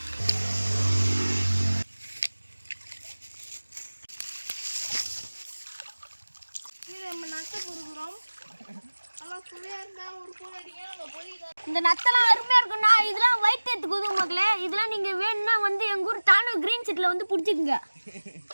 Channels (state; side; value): inverted; both; correlation -1.00